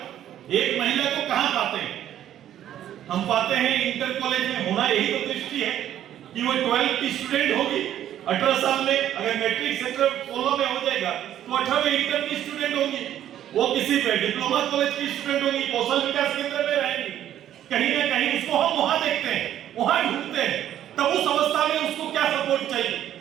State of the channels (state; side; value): quieter; left; 11.3 dB